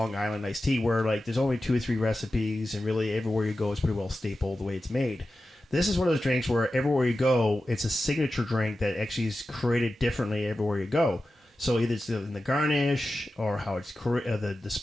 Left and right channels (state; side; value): normal; both; correlation 0.93